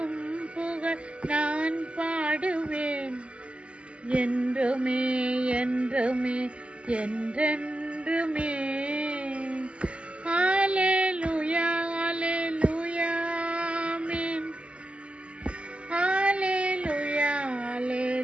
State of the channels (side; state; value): left; late; 0.057 ms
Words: புகழ் நான் பாடுவேன். என்றுமே என்றுமே என்றென்றுமே. ஹல்லேலூயா ஹல்லேலூயா ஆமென். ஹல்லேலூயா